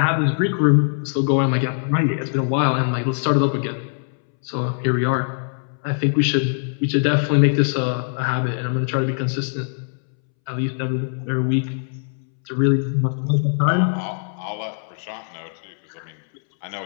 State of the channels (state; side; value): silent; right; 64 dB below the other